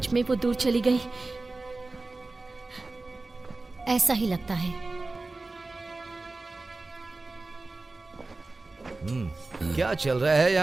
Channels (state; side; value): quieter; left; 3.3 dB